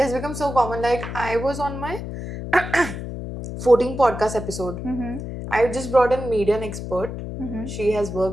has become so common. Like I was on my 14 podcast episode. I just brought in media an expert. She has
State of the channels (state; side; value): noise; left; hum, 7 dB below the sound